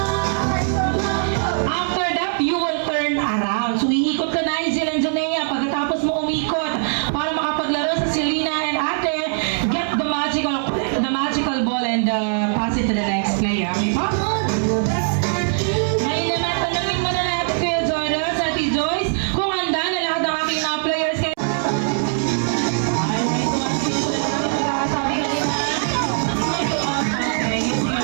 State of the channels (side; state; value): left; silent; digital silence